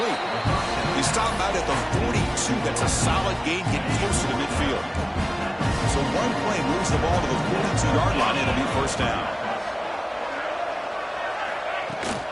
He stopped out at the 42. That's a solid gain, getting closer to midfield. So one play moves the ball to the 42-yard line. It'll be first down.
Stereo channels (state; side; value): identical; both; correlation 1.00